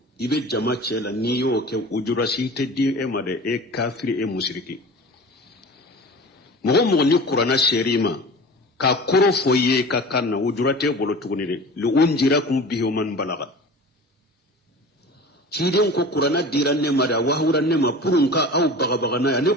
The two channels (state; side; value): normal; both; correlation 0.37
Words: ibe jama chela ni yo ke ujurasi te di e made e kafiri e mushriki mogo ni qur'ana sherima ka koro foye ka kanna ujurate bolo tuguni de li unjirakum bihi man balaga ciden ko qur'ana diran ne mada wahuran ne ma purunka au baga na ya ne